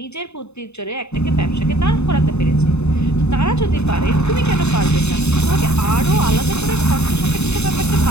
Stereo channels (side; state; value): right; late; 0.81 ms